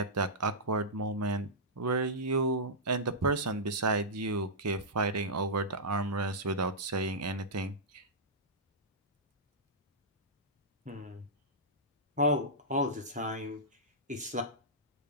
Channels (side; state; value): both; normal; correlation -0.12